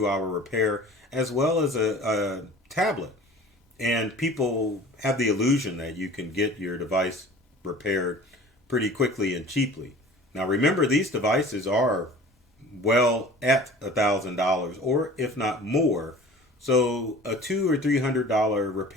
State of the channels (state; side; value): normal; both; correlation 0.44